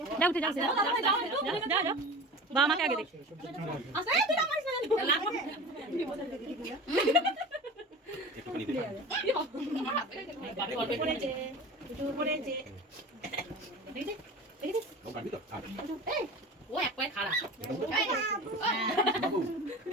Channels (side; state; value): both; normal; correlation 0.34